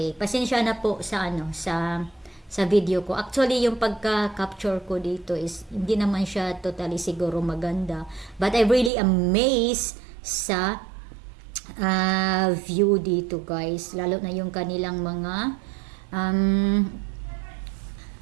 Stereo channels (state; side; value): drops out; left; at 8.9 s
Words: pasensya na po sa sa video ko. Actually, yung pagka-capture ko dito is hindi naman siya totally siguro maganda. But I'm really amazed sa view dito, guys. Lalo na yung kanilang mga